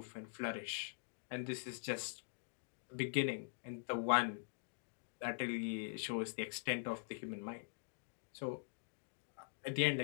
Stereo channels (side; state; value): right; silent; digital silence